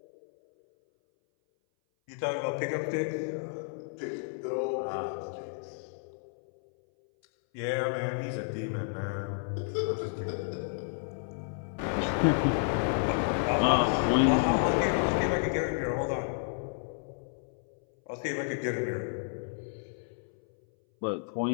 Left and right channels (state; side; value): silent; right; 57 dB below the other